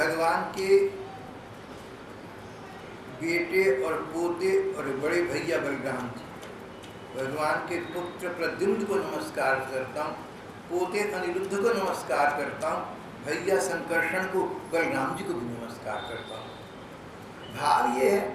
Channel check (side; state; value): both; identical; correlation 1.00